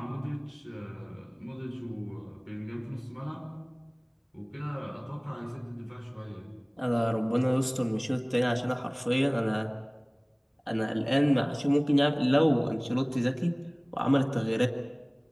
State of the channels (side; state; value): both; identical; correlation 1.00